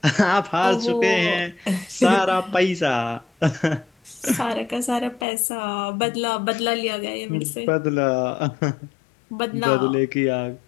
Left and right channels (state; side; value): drops out; right; at 5.2 s